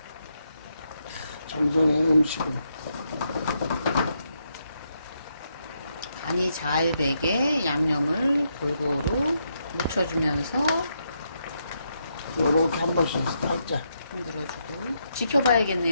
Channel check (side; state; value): both; inverted; correlation -0.80